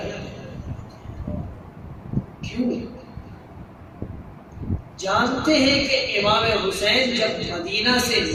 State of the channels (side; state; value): both; identical; correlation 1.00